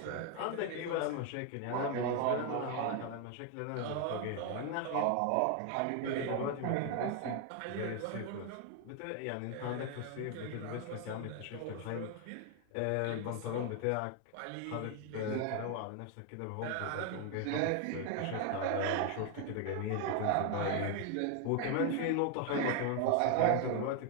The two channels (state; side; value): different; both; correlation 0.01